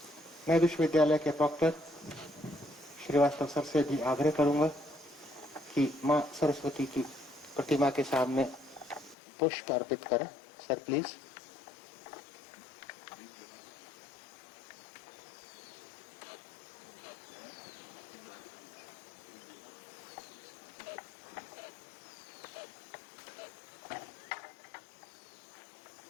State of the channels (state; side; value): drops out; right; at 9.2 s